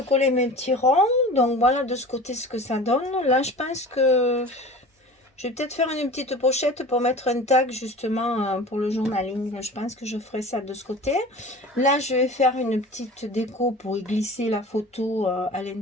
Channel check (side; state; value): both; normal; correlation 0.38